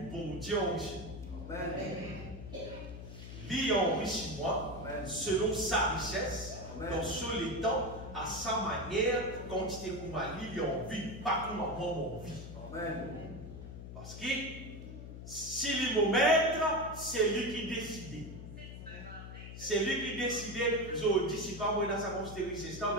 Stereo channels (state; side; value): noise; left; hum, 11 dB below the sound